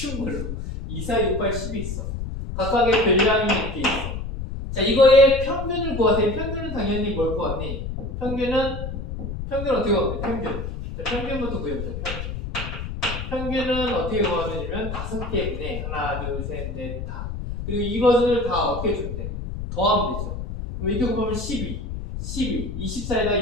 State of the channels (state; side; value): noise; left; rumble, 6 dB below the sound